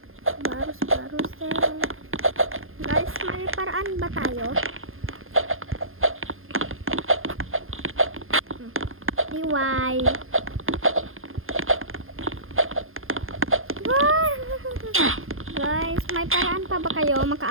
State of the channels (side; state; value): left; late; 0.60 ms